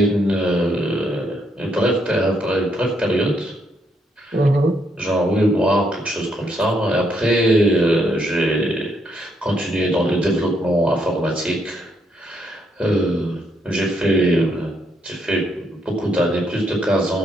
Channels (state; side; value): normal; both; correlation 0.75